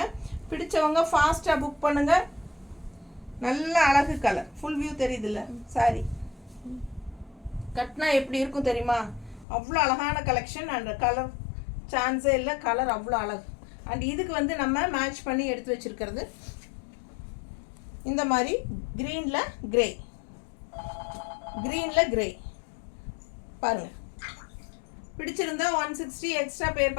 பிடிச்சவங்க ஃபாஸ்ட்டாக புக் பண்ணுங்கள். நல்ல அழகு கலர், ஃபுல் வியூ தெரியுதுல்ல சாரி? கட்டினா எப்படி இருக்கும் தெரியுமா? அவ்வளோ அழகான கலெக்ஷன். அண்ட் கலர் சான்ஸே இல்லை, கலர் அவ்வளோ அழகு. அண்ட் இதுக்கு வந்து நம்ம மேட்ச் பண்ணி எடுத்து வச்சுருக்கிறது இந்த மாதிரி க்ரீனில் கிரே, க்ரீனில் கிரே பாருங்கள். பிடிச்சிருந்தா 160 எக்ஸ்ட்ரா பே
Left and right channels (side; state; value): right; drops out; at 9.5 s